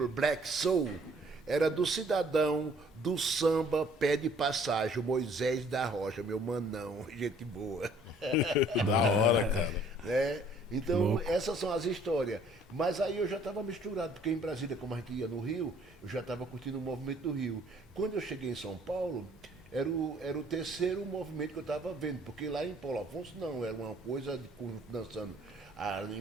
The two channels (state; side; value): normal; both; correlation 0.58